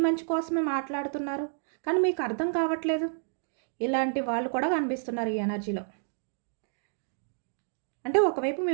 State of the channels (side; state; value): left; silent; digital silence